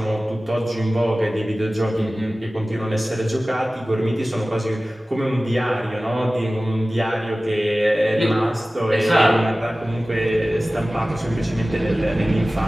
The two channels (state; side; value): normal; both; correlation 0.97